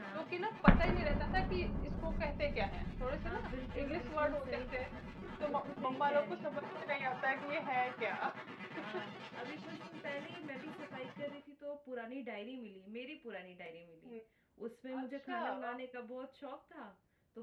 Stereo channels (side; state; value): both; identical; correlation 1.00